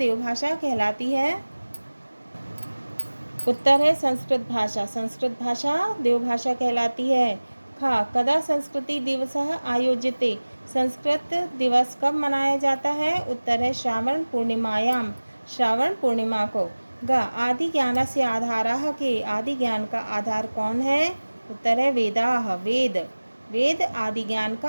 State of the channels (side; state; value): both; inverted; correlation -1.00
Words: कहलाती है? उत्तर है संस्कृत भाषा। संस्कृत भाषा देवभाषा कहलाती है। कदा संस्कृति दिवसः आयोज्यते। संस्कृत दिवस कब मनाया जाता है? उत्तर है श्रावण पूर्णिमायाम, श्रावण पूर्णिमा को। आदि ज्ञानस्य आधारः के। आदि ज्ञान का आधार कौन है? उत्तर है वेदाः, वेद। वेद आदि ज्ञान